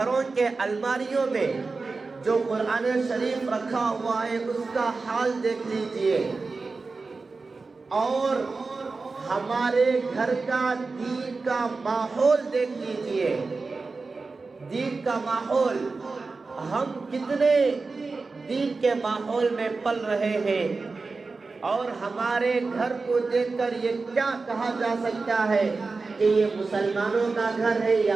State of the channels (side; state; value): left; quieter; 4.0 dB